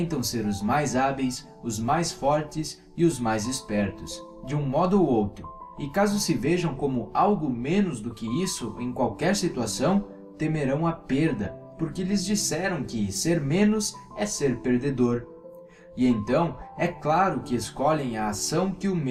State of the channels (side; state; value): both; identical; correlation 1.00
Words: ser os mais hábeis, os mais fortes e os mais espertos, de um modo ou outro. E caso se vejam como algo menos do que isso em qualquer situação, temerão a perda, porque lhes disseram que ser menos é ser perdedor. E então, é claro que escolhem a ação que o